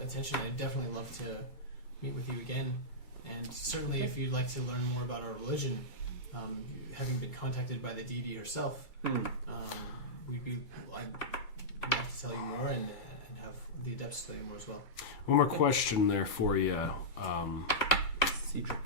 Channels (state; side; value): late; right; 2.2 ms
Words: attention, I'd definitely love to meet with you again. And certainly, if you'd like to learn more about our religion, having been contacted by the deity herself, I'd love to tell you more and have the adepts tell you more as well. One more question there for you, Cedric.